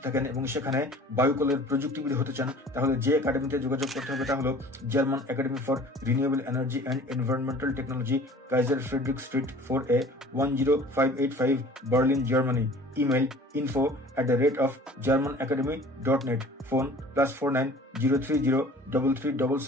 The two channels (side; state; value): both; normal; correlation 0.47